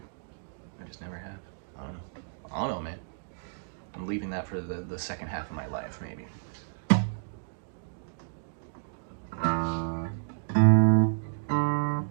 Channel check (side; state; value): left; silent; digital silence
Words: I just never have. I don't know, man. I'm leaving that for the second half of my life, maybe.